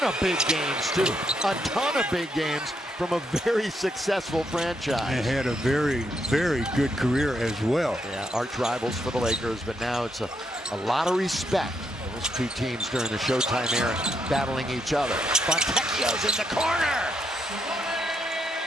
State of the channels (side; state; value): both; normal; correlation 0.78